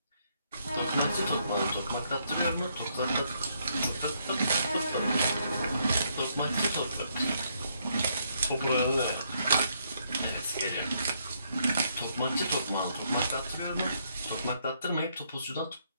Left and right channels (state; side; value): inverted; both; correlation -0.73